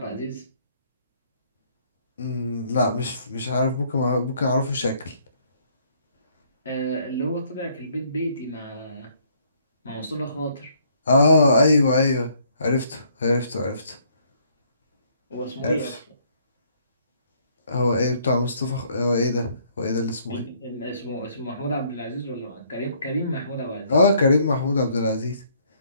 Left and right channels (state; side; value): inverted; both; correlation -0.65